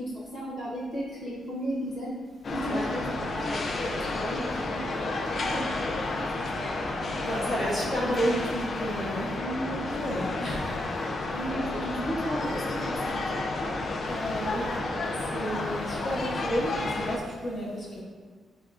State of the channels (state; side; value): normal; both; correlation 0.81